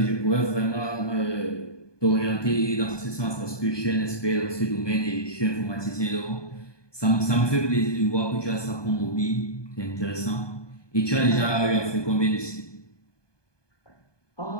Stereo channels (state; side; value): late; right; 1.2 ms